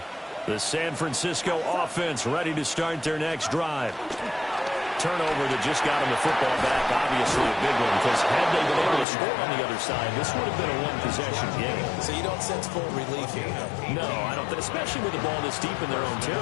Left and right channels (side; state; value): right; drops out; at 9.1 s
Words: The San Francisco offense ready to start their next drive. Turnover that just got them the football back, obviously a big one, because had they been able to score on the other side, this would have been a one-possession game. So you don't sense full relief here? No, I don't, especially with the ball this deep in their own